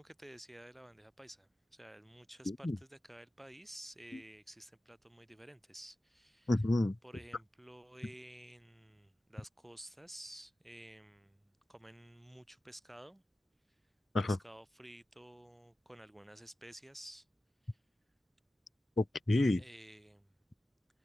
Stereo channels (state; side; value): normal; both; correlation 0.94